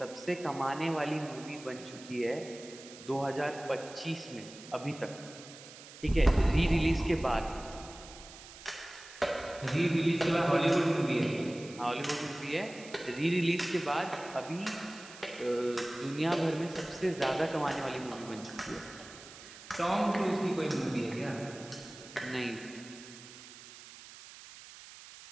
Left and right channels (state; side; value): noise; right; hiss, 16 dB below the sound